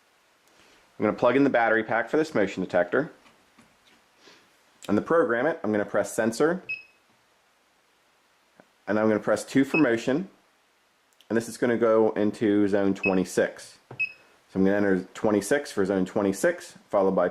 I'm going to plug in the battery pack for this motion detector. And to program it, I'm going to press sensor, and I'm going to press 2 for motion, and this is going to go into zone 26. So I'm going to enter 26 for zone 26, followed by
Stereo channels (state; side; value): identical; both; correlation 1.00